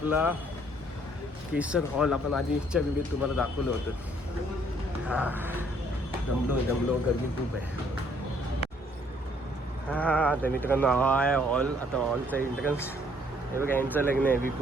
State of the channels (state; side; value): normal; both; correlation 0.64